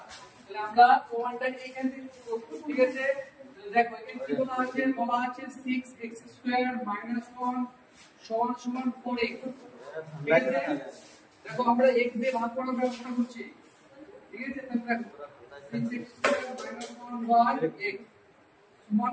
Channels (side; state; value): both; identical; correlation 1.00